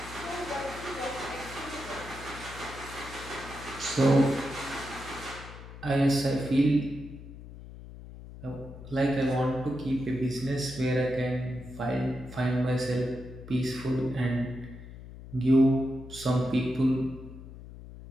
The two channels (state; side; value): noise; left; hum, 14 dB below the sound